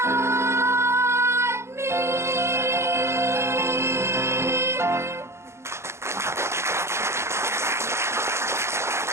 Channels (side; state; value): left; late; 0.13 ms